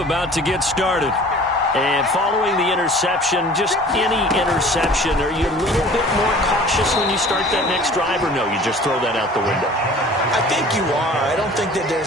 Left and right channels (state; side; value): normal; both; correlation 0.46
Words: to get started. And following the interception, just any interception, are you a little bit more cautious when you start that next drive, or no, you just throw that out the window? I think you are. I don't think that